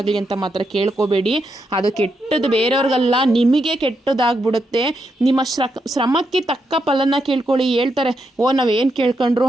ಅಂತ ಮಾತ್ರ ಕೇಳ್ಕೊಬೇಡಿ. ಅದು ಕೆಟ್ಟದ್ದು ಬೇರೆಯವ್ರಿಗಲ್ಲ, ನಿಮಗೆ ಕೆಟ್ಟದಾಗ್ಬಿಡುತ್ತೆ. ನಿಮ್ಮ ಶ್ರಮಕ್ಕೆ ತಕ್ಕ ಫಲನ ಕೇಳ್ಕೊಳ್ಳಿ. ಹೇಳ್ತಾರೆ, ನಾವೇನು ಕೇಳ್ಕೊಂಡ್ರು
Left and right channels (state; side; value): normal; both; correlation 0.82